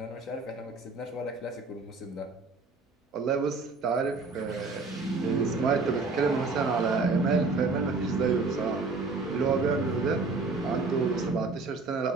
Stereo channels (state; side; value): quieter; left; 3.8 dB